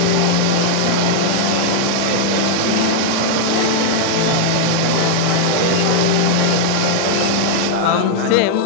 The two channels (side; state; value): both; different; correlation 0.00